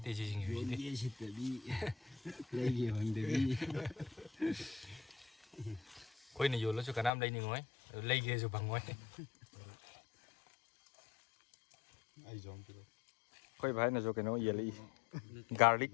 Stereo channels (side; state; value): right; drops out; at 7.1 s